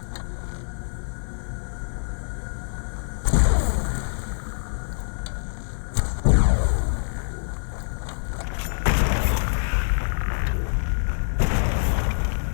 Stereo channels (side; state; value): right; silent; digital silence